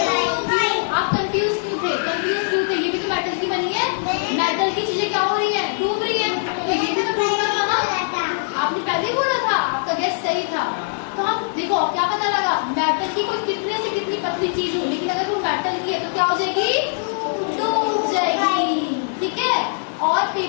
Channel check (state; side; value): silent; right; 65 dB below the other